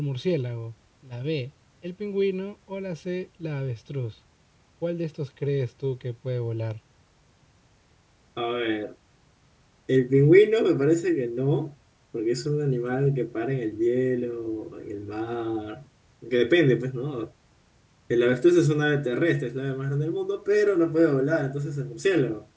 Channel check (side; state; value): both; identical; correlation 1.00